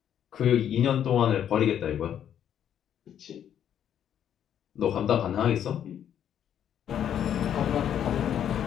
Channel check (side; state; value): right; quieter; 9.6 dB